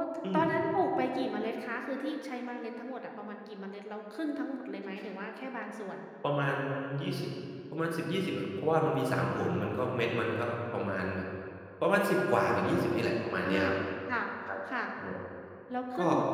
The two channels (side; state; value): both; identical; correlation 1.00